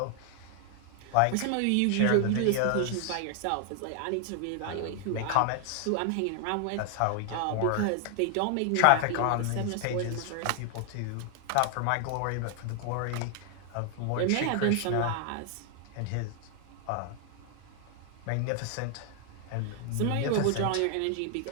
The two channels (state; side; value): different; both; correlation 0.00